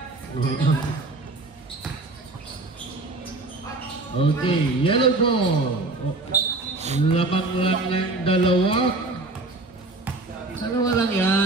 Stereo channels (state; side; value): quieter; left; 3.1 dB